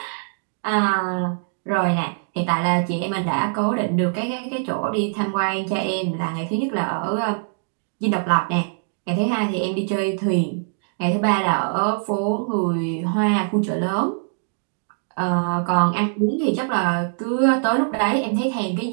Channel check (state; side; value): silent; left; digital silence